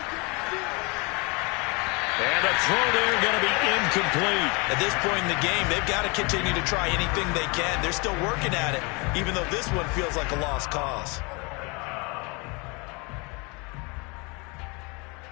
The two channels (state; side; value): quieter; right; 29.2 dB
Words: And a throw there going to be incomplete. At this point in the game, they've got to continue to try anything they can. They're still working at it, even though this one feels like a lost cause.